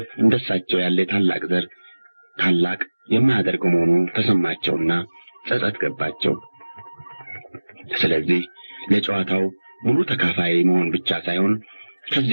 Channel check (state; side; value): inverted; both; correlation -1.00